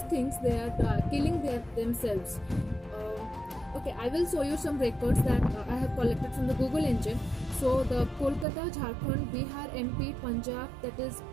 things, they are killing themselves. Okay, I will show you some records that I have collected from the Google engine. So the Kolkata, Jharkhand, Bihar, MP, Punjab, that is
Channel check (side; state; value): left; drops out; at 8.5 s